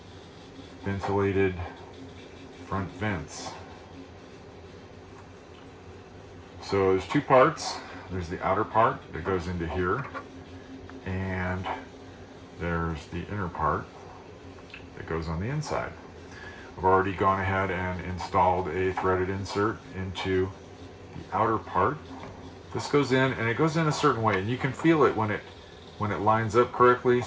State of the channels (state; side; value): identical; both; correlation 1.00